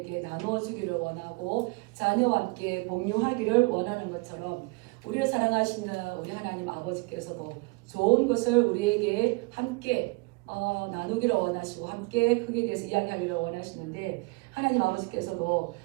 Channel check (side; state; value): left; quieter; 26.6 dB